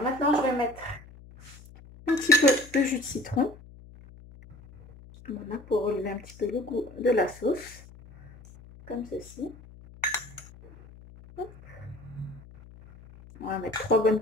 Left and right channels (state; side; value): noise; left; hum, 20 dB below the sound